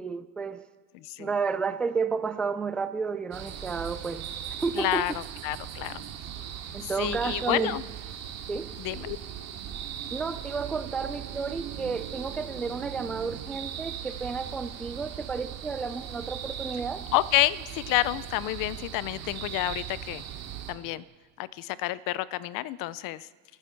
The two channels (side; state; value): both; normal; correlation 0.35